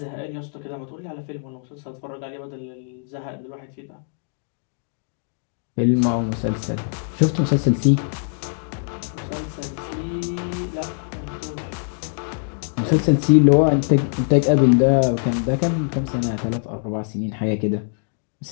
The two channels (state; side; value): silent; right; digital silence